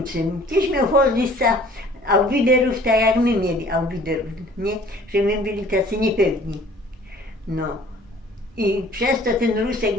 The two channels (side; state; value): both; normal; correlation 0.52